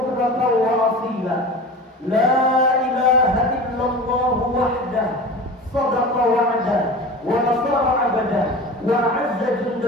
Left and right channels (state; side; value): normal; both; correlation 0.34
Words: وأصيلا لا إله إلا الله وحده صدق وعده ونصر عبده وأعز